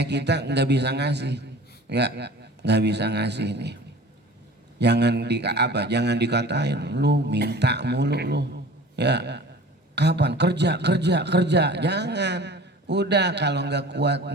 nggak bisa ngasih, ya nggak bisa ngasih nih. Jangan dikatain lu minta mulu lu. Ya, kapan kerja, jangan. Udah, kalau nggak kuat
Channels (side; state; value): both; normal; correlation 0.43